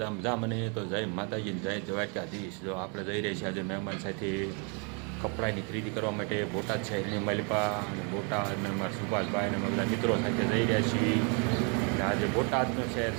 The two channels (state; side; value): quieter; left; 35.9 dB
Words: મજા મને તો જય માતાજી જય દ્વારકાધીશ. જો આપણે જઈ રહ્યા છીએ આજે મહેમાન સાથે કપડાની ખરીદી કરવા માટે બોટાદ શહેરની મલિપા અને બોટાદ અને અમારા સુભાષભાઈ અને અમે બધા મિત્રો સાથે જઈ રહ્યા છીએ. અને આજે બોટાદનું શહેર